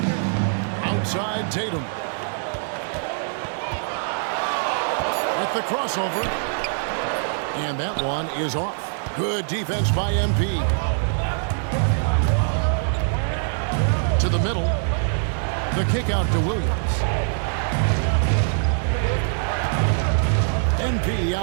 Outside Tatum. With the crossover. And that one is off. Good defense by MP. To the middle. The kick out to Williams. MP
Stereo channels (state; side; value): silent; left; digital silence